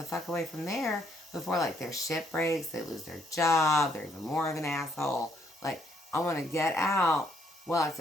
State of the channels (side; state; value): both; normal; correlation 0.70